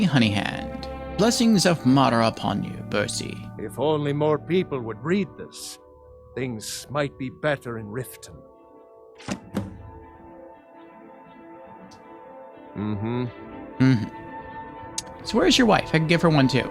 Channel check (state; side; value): identical; both; correlation 1.00